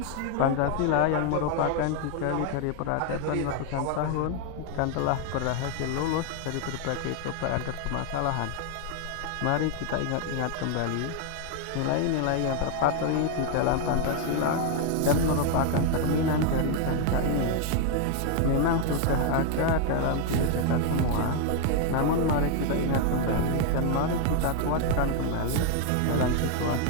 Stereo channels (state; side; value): different; both; correlation 0.00